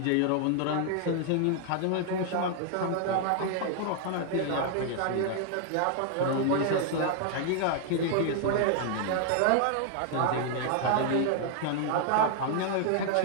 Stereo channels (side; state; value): both; different; correlation 0.00